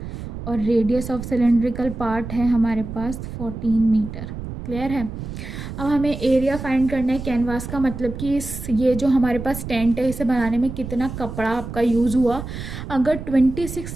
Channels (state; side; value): noise; right; rumble, 9 dB below the sound